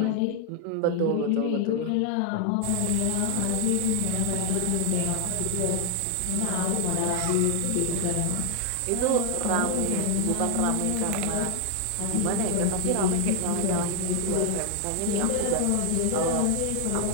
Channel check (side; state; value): both; different; correlation 0.00